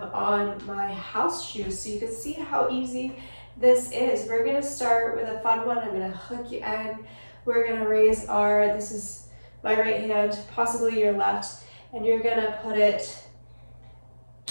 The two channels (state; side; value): inverted; both; correlation -1.00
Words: on my house shoes so you can see how easy this is. We're gonna start with a fun one. I'm gonna hook you in. We're gonna raise this is my right hand, possibly your left, and you're gonna put it